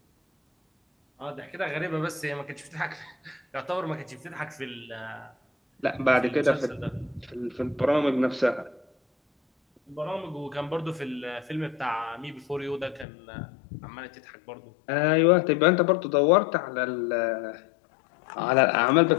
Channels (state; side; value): drops out; right; at 13.1 s